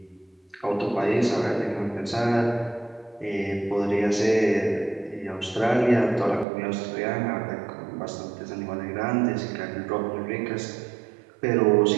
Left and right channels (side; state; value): left; drops out; at 6.5 s